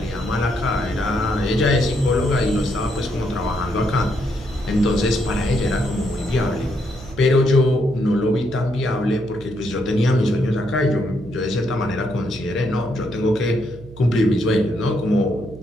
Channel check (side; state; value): right; noise; hum, 17 dB below the sound